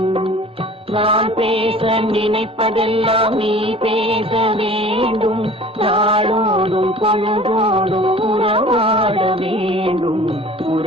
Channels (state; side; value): normal; both; correlation 0.45